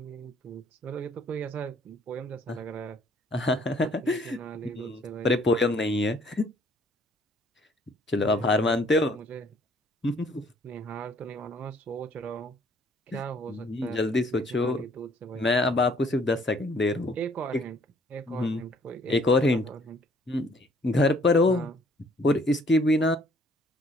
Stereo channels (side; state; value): both; normal; correlation 0.61